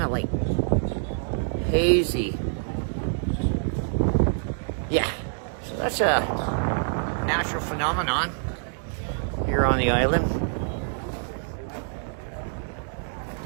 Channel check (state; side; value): silent; left; digital silence